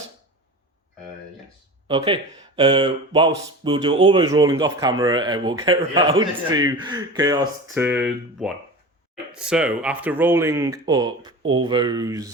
Yes. Okay. Whilst we'll do all those rolling off camera and we'll get around to Chaos turn 1. So, after rolling up all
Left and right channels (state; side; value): normal; both; correlation 0.32